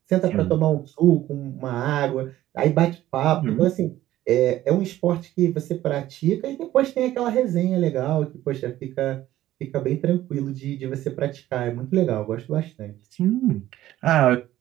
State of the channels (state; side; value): quieter; left; 14.2 dB